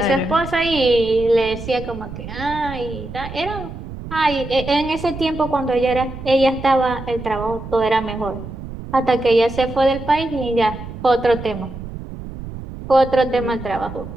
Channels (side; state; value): right; noise; rumble, 10 dB below the sound